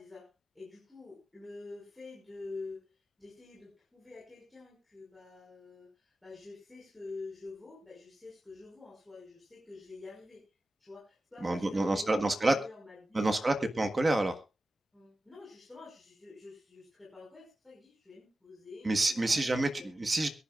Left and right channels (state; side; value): normal; both; correlation 0.94